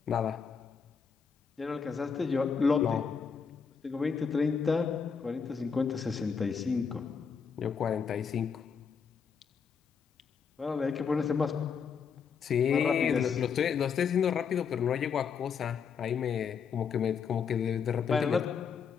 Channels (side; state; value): right; quieter; 6.3 dB